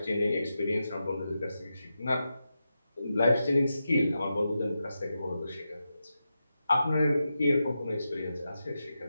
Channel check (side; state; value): both; inverted; correlation -0.89